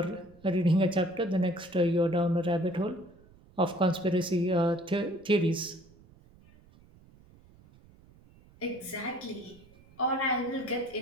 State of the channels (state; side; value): noise; right; rumble, 26 dB below the sound